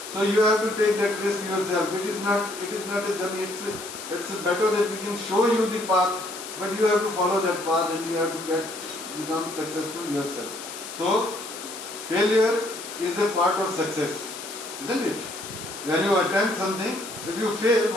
So you have to take that risk yourself. It is not a journey. It's better that we can show you the path, but you have to follow that path and you have to become successful yourself. So failure is a part of success, isn't it? When you attempt something, if you fail,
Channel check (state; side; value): noise; left; hiss, 11 dB below the sound